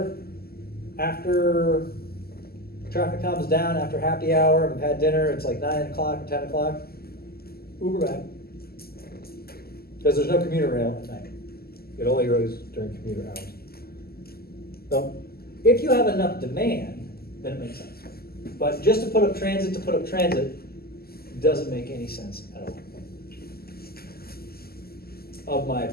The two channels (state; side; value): late; right; 0.45 ms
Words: After traffic calms down, after happy hour, we've had dinner, it's like 9 o'clock or 10 o'clock, Uber back. Because there's no commuter rail at night. It only goes during commuter hours. So, if you have enough demand, then it makes sense. But just to put up transit doesn't make any sense at all. Of my